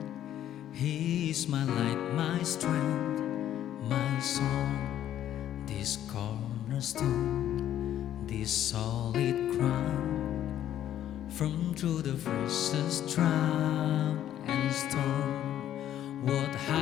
He is my light, my strength, my song. This cornerstone, this solid ground. From through the fiercest drought and storm, what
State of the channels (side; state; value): right; quieter; 11.4 dB